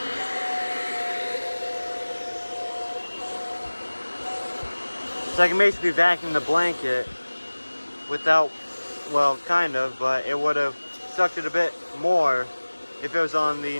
So I can basically vacuum the blanket without, well, kind of, but it would have sucked it a bit more if it was on the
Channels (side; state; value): both; inverted; correlation -1.00